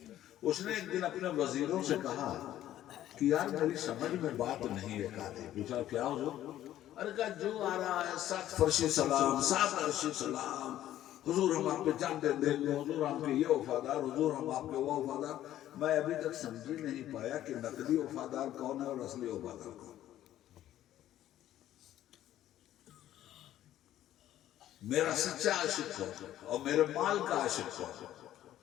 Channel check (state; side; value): quieter; right; 12.7 dB